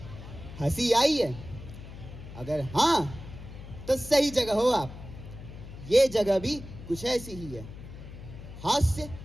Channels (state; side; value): noise; left; hum, 13 dB below the sound